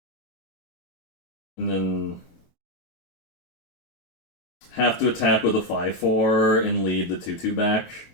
And then have to attack with a 5/4 and lead the 2/2 back,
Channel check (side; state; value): right; late; 23 ms